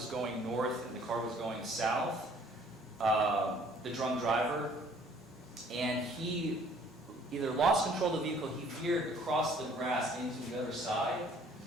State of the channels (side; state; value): both; normal; correlation 0.57